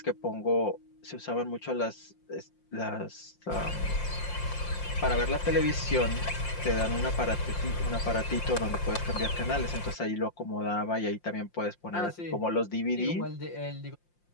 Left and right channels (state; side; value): late; right; 5.7 ms